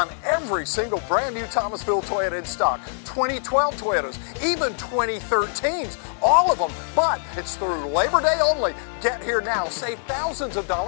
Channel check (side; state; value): right; silent; digital silence